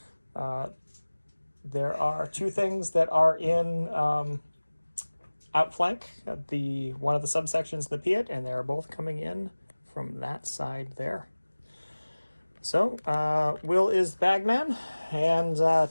there are two things that are in outflank, one of the subsections, the Piat, and they're both coming in from that side there. So, Will is the bagman, and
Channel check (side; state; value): both; inverted; correlation -1.00